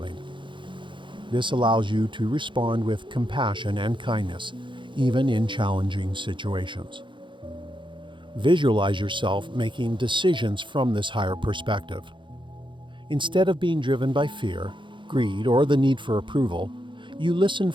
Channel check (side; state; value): left; late; 0.23 ms